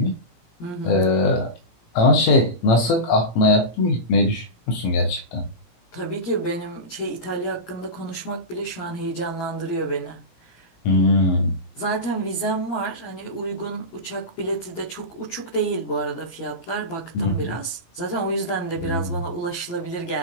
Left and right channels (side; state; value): right; late; 17 ms